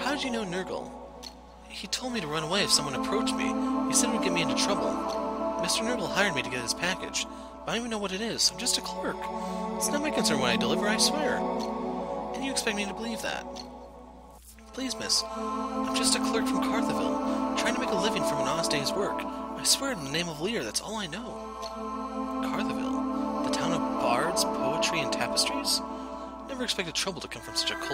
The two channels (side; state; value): both; identical; correlation 1.00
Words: did you know Nurgle? He told me to run away if someone approached me. He said it would get me into trouble. Mr. Nurgle hired me to get his package, but I don't even know what it is. I'm just a clerk. It's not my concern when I deliver, I swear. And you expect me to believe that? Please, miss. I'm just a clerk from Cartheville, trying to make a living from an honest day's work. I swear in the name of Lear, that's all I know. Cartheville? The town of bards, poetry, and tapestries? Never expected trouble to come from such a